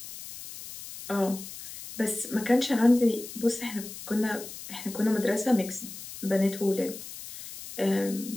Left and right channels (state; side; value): noise; left; hiss, 12 dB below the sound